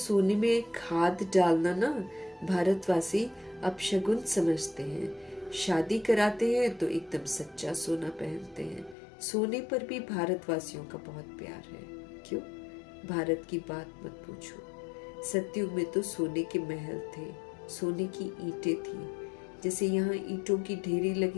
में खाद डालना ना भारतवासी अपशगुन समझते हैं। शादी कराते हैं तो एकदम सच्चा सोना पहनते हैं। सोने पर भी भारतवासियों का बहुत प्यार है। क्यों? भारत की बात मत पूछो। सतयुग में तो सोने के महल थे, सोने की ईंटें थी। जैसे यहाँ ईंटों की ढेरी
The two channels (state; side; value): drops out; right; at 9.0 s